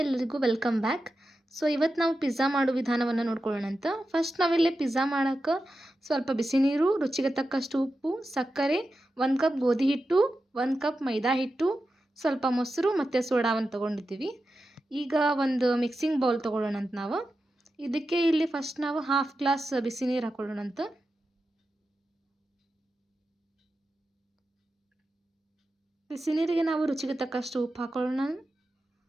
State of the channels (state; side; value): normal; both; correlation 0.91